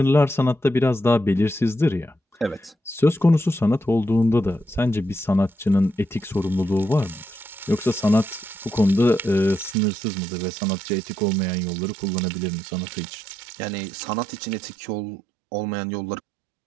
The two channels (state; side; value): drops out; left; at 9.8 s